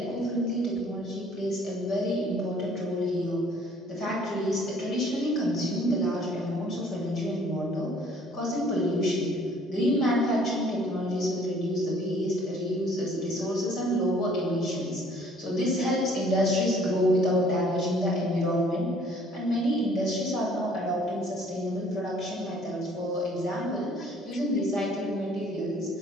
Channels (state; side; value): normal; both; correlation 0.57